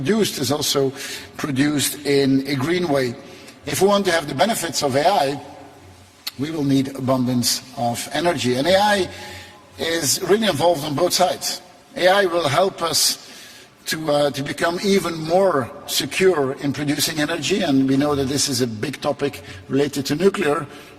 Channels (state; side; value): identical; both; correlation 1.00